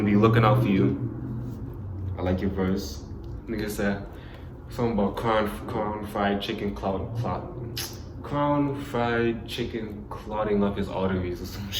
be looking out for you. I like your verse. Nigga said something about crown fried chicken clotting up his arteries or some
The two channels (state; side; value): identical; both; correlation 1.00